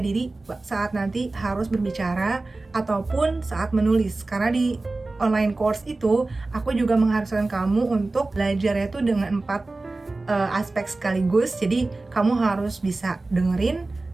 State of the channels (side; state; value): left; quieter; 3.2 dB